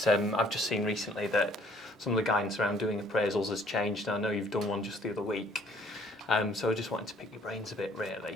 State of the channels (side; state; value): both; normal; correlation 0.59